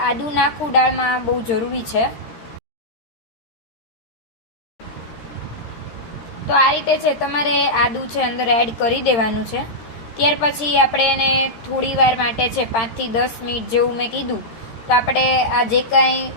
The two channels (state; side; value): late; right; 13 ms